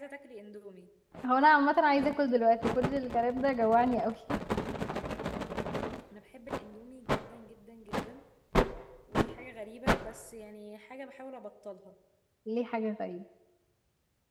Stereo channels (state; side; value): identical; both; correlation 1.00